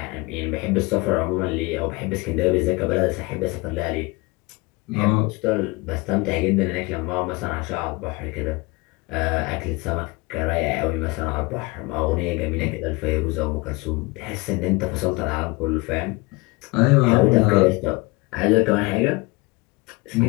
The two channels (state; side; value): quieter; right; 24.7 dB